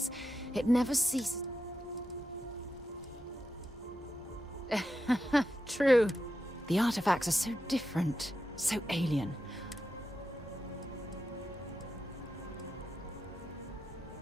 it never ceases... True. The artifacts are so different, so alien.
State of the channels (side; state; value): both; normal; correlation 0.88